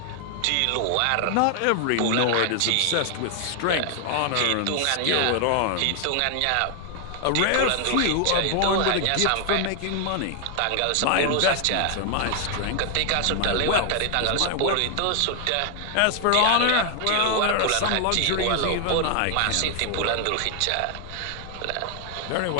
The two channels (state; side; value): different; both; correlation 0.00